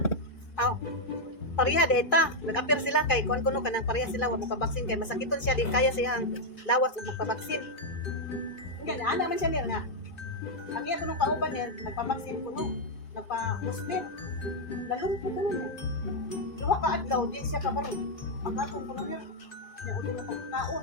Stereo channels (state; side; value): late; right; 2.3 ms